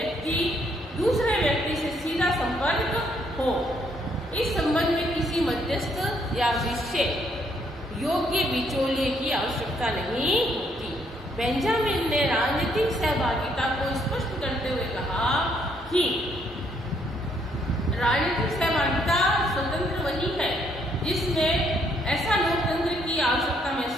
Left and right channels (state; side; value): normal; both; correlation 0.70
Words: दूसरे व्यक्ति से सीधा संपर्क हो, इस संबंध में किसी मध्यस्थ या विषय योग्य बिचौलिए की आवश्यकता नहीं होती। बेंजामिन ने राजनीतिक सहभागिता को स्पष्ट करते हुए कहा कि राजनीतिक सहभागिता स्वतंत्र वही है जिसमें ऐसा लोकतंत्र की आवश्यकता